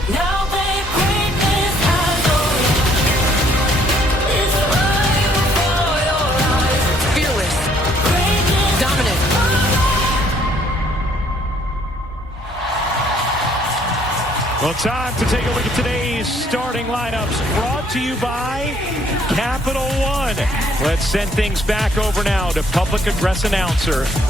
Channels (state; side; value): normal; both; correlation 0.64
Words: Now they bring this has it's right before your eyes. Fearless, dominant. Well, time to take a look at today's starting lineups, brought to you by Capital One. Let's send things back over now to public address announcer